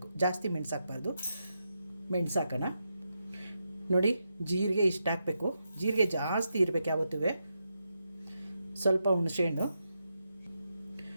ಜಾಸ್ತಿ ಮೆಣಸು ಹಾಕಬಾರ್ದು. ಮೆಣಸು ಹಾಕೋಣ. ನೋಡಿ, ಜೀರಿಗೆ ಇಷ್ಟು ಹಾಕಬೇಕು. ಜೀರಿಗೆ ಜಾಸ್ತಿ ಇರಬೇಕು ಯಾವತ್ತೂ. ಸ್ವಲ್ಪ ಹುಣಸೆಹಣ್ಣು,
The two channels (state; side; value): inverted; both; correlation -0.85